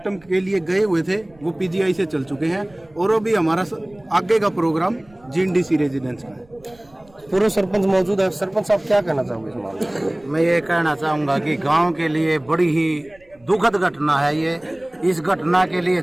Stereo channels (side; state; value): right; noise; rumble, 29 dB below the sound